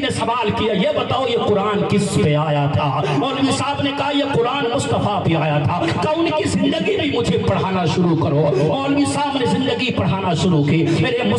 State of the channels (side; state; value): both; identical; correlation 1.00